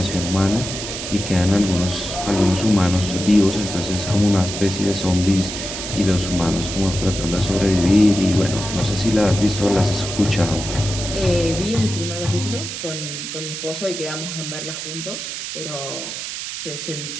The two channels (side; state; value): right; noise; hiss, 6 dB below the sound